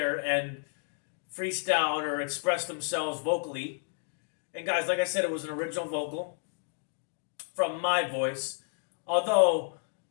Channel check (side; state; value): right; silent; digital silence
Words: and freestyled or expressed themselves vocally. And guys, like I said, it was an original vocal from my voice, although